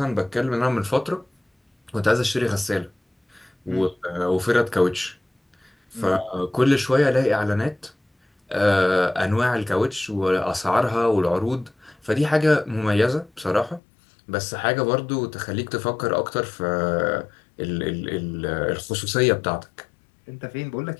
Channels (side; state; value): right; drops out; at 13.8 s